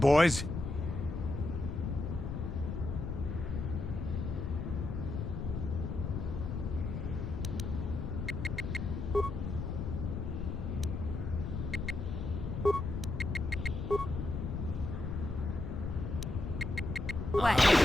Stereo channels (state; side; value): noise; left; rumble, 3 dB below the sound